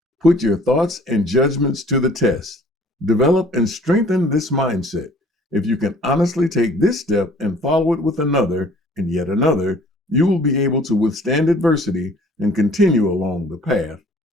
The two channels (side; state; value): both; normal; correlation 0.53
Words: Put your thoughts and judgments to the test. Develop and strengthen this mindset. If you can honestly take this step and follow it with another and yet another, you will be able to withstand adversity and continue along the path